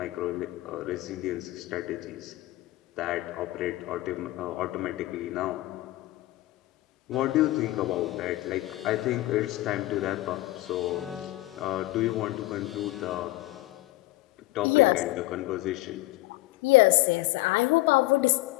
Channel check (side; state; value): right; quieter; 18.6 dB